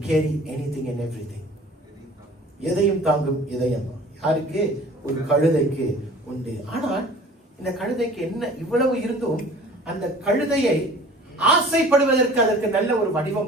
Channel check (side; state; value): both; normal; correlation 0.46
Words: carry anything and everything. எதையும் தாங்கும் இதயம் யாருக்கு? ஒரு கழுதைக்கு உண்டு. ஆனால் இந்த கழுதைக்கு என்ன இவ்வளவு இருந்தும் அந்த கழுதையை ஆசைப்படுவதற்கு அதற்கு நல்ல ஒரு